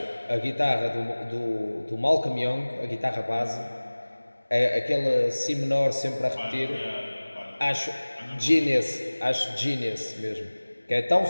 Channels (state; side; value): inverted; both; correlation -1.00